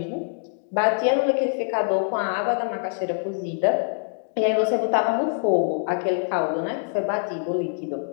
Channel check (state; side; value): silent; right; digital silence